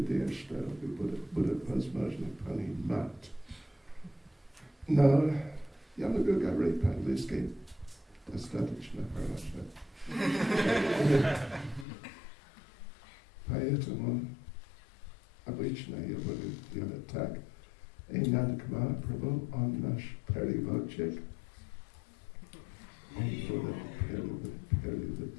что будет возможно понимать. Но я могу говорить по-английски достаточно хорошо. Поэтому обычно я буду делать так. И Нанак Махапрабху, он наш переводчик. Он будет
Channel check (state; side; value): drops out; right; at 11.9 s